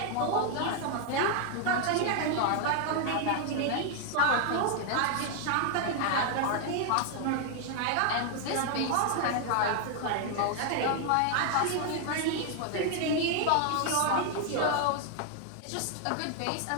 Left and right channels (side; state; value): both; different; correlation 0.00